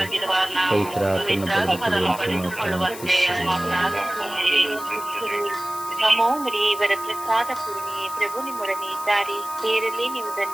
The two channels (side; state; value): left; noise; hiss, 13 dB below the sound